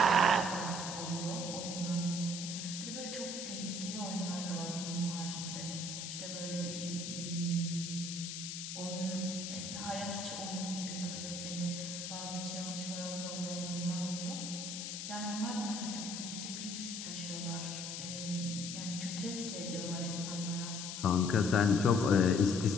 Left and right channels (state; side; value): noise; left; hiss, 6 dB below the sound